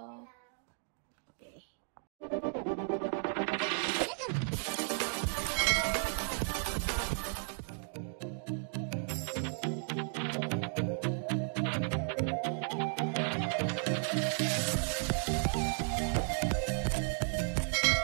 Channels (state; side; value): silent; left; 55 dB below the other